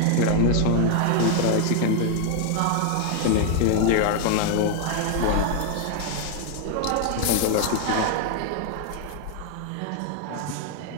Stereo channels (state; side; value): different; both; correlation 0.00